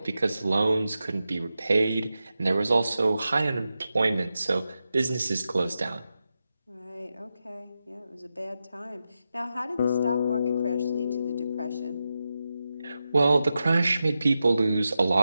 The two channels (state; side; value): inverted; both; correlation -0.90